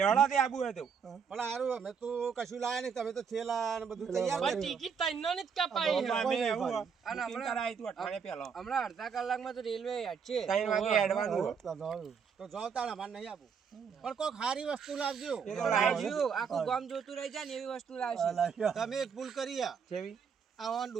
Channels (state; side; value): quieter; left; 6.5 dB